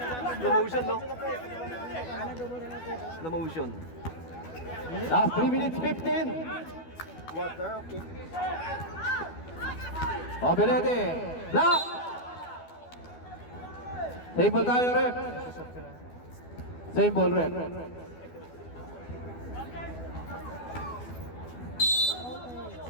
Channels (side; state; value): right; late; 12 ms